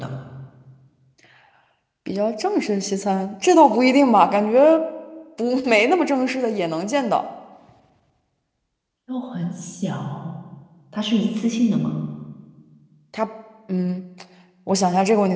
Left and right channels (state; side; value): identical; both; correlation 1.00